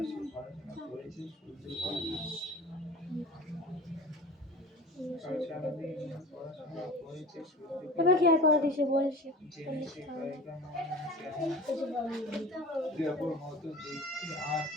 পড়াশোনা করেছে, এবার কি আর করে দিছে বলছে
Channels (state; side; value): normal; both; correlation 0.38